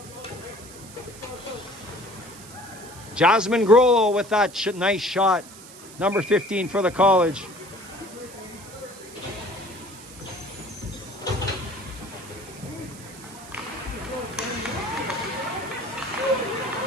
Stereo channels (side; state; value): right; noise; hiss, 18 dB below the sound